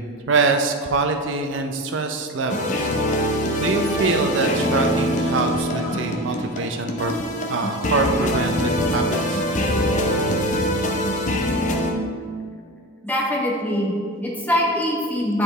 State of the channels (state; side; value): normal; both; correlation 0.27